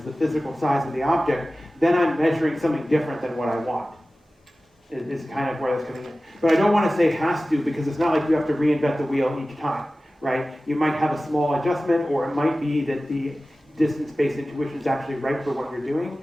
the physical size of the object, then I'm measuring something different than what I want, is kind of where that's coming in. But I don't want to say has to, because it's not like you have to reinvent the wheel each time, right? You might have a small adjustment, or it might be that the distance-based intuition is actually right for what you're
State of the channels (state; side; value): normal; both; correlation 0.96